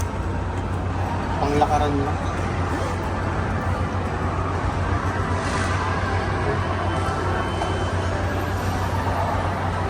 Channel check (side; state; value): both; identical; correlation 1.00